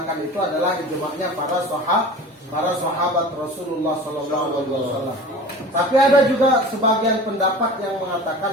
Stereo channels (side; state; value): both; normal; correlation 0.38